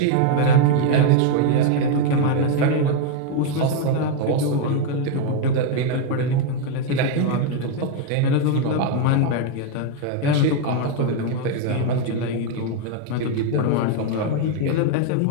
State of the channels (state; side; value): different; both; correlation 0.01